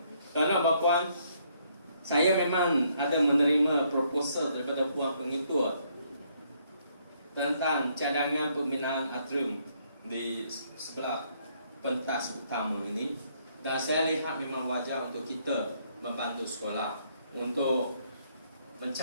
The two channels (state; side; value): inverted; both; correlation -0.70